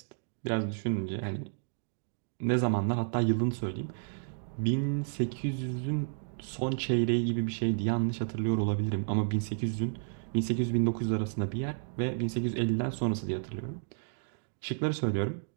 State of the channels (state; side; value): silent; left; digital silence